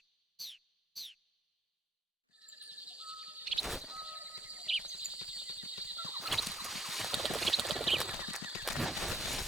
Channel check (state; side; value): normal; both; correlation 0.66